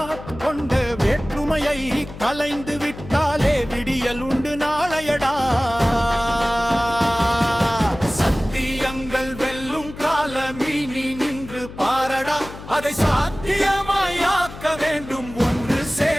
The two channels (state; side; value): noise; left; hum, 14 dB below the sound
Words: கொண்ட வேற்றுமையை கலைந்து விட்டாலே விடியல் உண்டு நாளையடா. சத்தியங்கள் வெல்லும் காலமீ நீ நின்று பாரடா. அதை சாத்தியமாயாக்க வேண்டும் ஒன்று